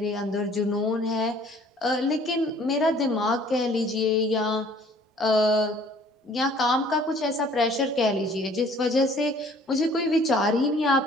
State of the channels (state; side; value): normal; both; correlation 0.55